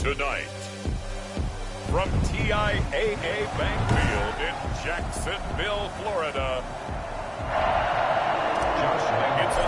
from TIAA Bank Field in Jacksonville, Florida, it's a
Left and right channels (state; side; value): identical; both; correlation 1.00